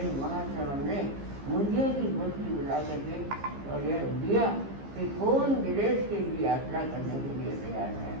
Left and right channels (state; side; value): late; left; 15 ms